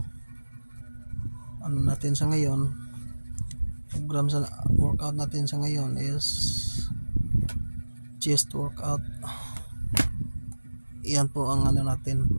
ano natin sa ngayon, program sa workout natin sa ngayon is chest workout. Iyan po ang ano natin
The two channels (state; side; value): inverted; both; correlation -1.00